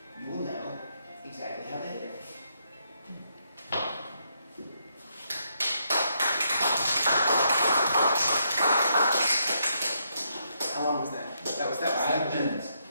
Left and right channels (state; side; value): inverted; both; correlation -0.77